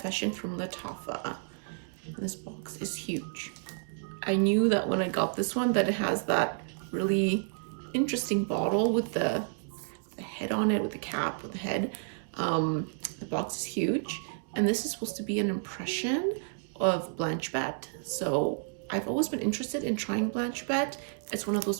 from Lattafa. This box is huge. I knew that when I got this one that it has that really interesting bottle with the head on it, with the cap, with the head. The box is huge, and this is supposed to be an impression of Blanche Bette. So I've always been interested in trying Blanche Bette. It's one of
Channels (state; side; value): silent; left; digital silence